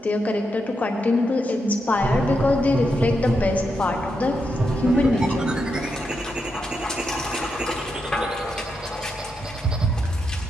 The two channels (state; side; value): normal; both; correlation 0.84